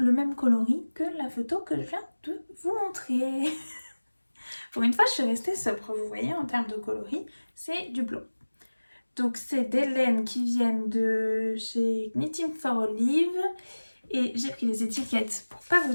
même coloris que la photo que je viens de vous montrer. Pour une fois, je suis restée sobre, vous voyez, en termes de coloris, c'est du blond. Donc c'est des laines qui viennent de chez Knitting for Olive. Et j'ai pris les étiquettes pour pas vous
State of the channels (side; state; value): both; inverted; correlation -1.00